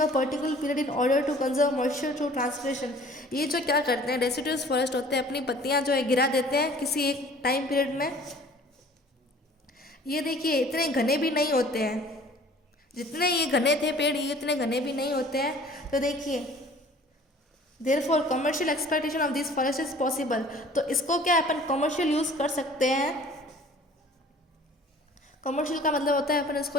particular period in order to conserve moisture through transpiration. ये जो क्या करते हैं डेसिडुअस फॉरेस्ट होते हैं, अपनी पत्तियां जो है गिरा देते हैं किसी एक टाइम पीरियड में. ये देखिए इतने घने भी नहीं होते हैं, जितने ये घने थे पेड़ ये इतने घने भी नहीं होते हैं. तो देखिए therefore commercial exploitation of these forests is possible. तो इसको क्या अपन कमर्शियल यूज़ कर सकते हैं. कमर्शियल का मतलब होता है अपन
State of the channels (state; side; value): normal; both; correlation 0.50